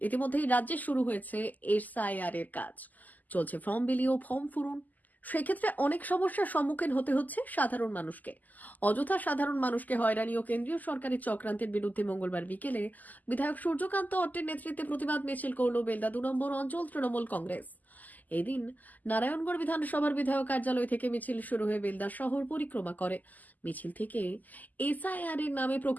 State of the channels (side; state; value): right; late; 0.082 ms